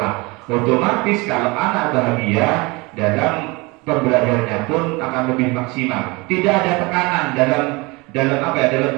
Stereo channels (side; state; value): left; quieter; 25.3 dB